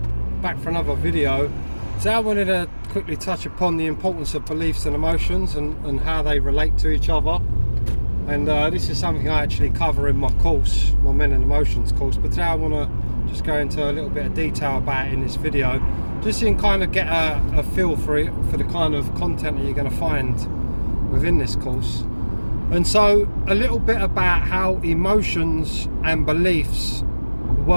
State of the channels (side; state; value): both; inverted; correlation -1.00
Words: back for another video. So I wanted to quickly touch upon the importance of beliefs and emotions and how they relate to each other. And this is something I actually cover in my course, my Men and Emotions course, but today I want to just go into a little bit of detail about it in this video, just so you can kind of get a feel for it, for the kind of content that you're going to find within this course. And so a little bit about how emotions and beliefs